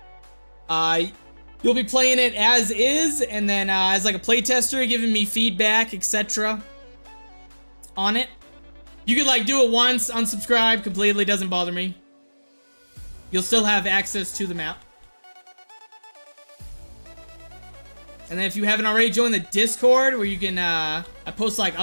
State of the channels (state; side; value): inverted; both; correlation -1.00